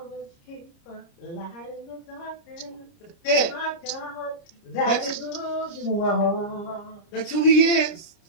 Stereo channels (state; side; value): late; right; 30 ms